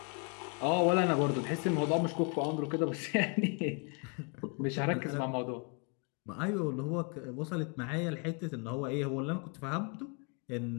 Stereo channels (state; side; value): quieter; right; 36.7 dB